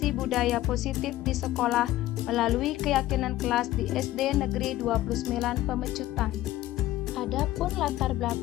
budaya positif di sekolah melalui keyakinan kelas di SD Negeri 29 Pemecutan. Adapun latar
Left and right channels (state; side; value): quieter; right; 15.2 dB